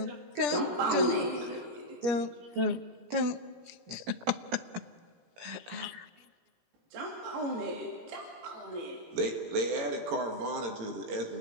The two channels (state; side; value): late; left; 17 ms